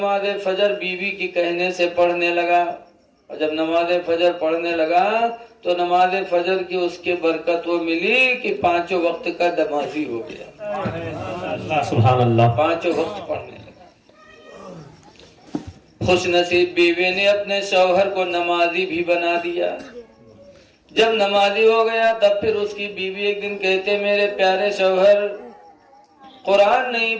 فجر بیوی کی کہنے سے پڑھنے لگا. اور جب نماز فجر پڑھنے لگا تو نماز فجر کی اس کے برکت وہ ملی کہ 5 وقت کا نمازی ہو گیا. سبحان اللہ. 5 وقت پڑھنے لگا. خوش نصیب بیوی نے اپنے شوہر کو نمازی بھی بنا دیا. جب نمازی ہو گیا تب پھر اس کی بیوی ایک دن کہتے میرے پیارے شوہر قرآن نہیں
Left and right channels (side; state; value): both; identical; correlation 1.00